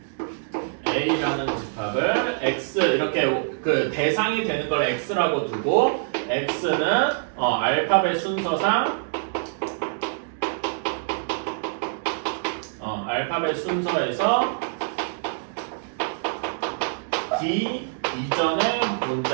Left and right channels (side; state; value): left; silent; digital silence